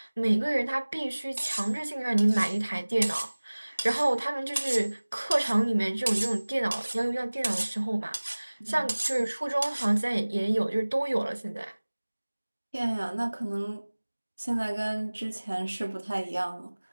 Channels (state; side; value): inverted; both; correlation -1.00